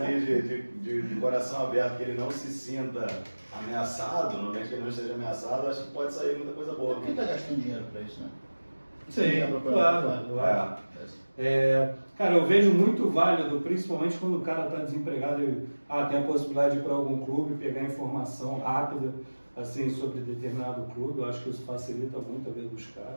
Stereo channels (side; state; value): both; inverted; correlation -1.00